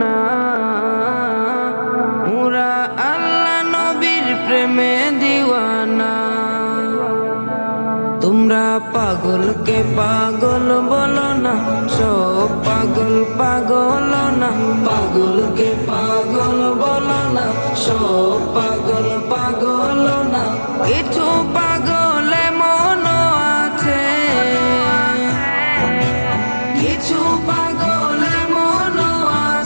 পুরা আল্লাহ নবীর প্রেমে দিওয়ানা। তোমরা পাগলকে পাগল বলো না, সব পাগল পাগল না। পাগলকে পাগল বলো না, সব পাগল পাগল না। কিছু পাগল এমন আছে, কিছু পাগল এমন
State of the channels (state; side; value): inverted; both; correlation -1.00